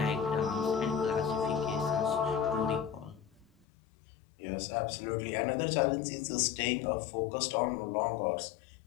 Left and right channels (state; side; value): drops out; right; at 3.7 s